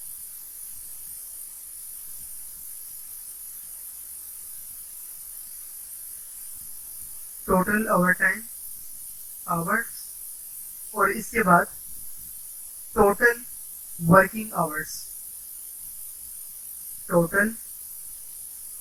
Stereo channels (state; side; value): identical; both; correlation 1.00